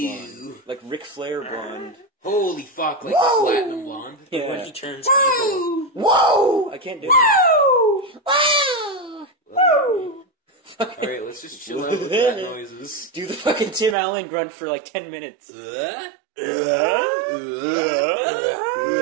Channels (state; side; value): drops out; left; at 14.0 s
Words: blonde. Like Ric Flair blonde. Holy fuck, like platinum blonde. Yeah. When he turns evil. Whoa! I can't do it. Whoa! Whoa! Alright, let's just chill out with that noises. Do the fucking Tim Allen grunt for like 10 minutes. People